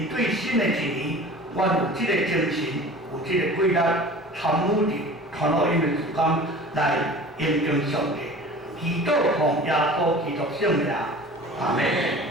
对新的一年，阮有这个精神，有这个规律，参与伫传福音的事工来应用上帝，祈祷奉耶稣基督圣名，阿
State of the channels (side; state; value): both; normal; correlation 0.41